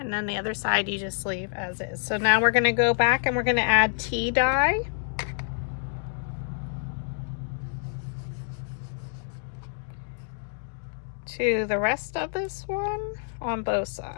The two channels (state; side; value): silent; right; digital silence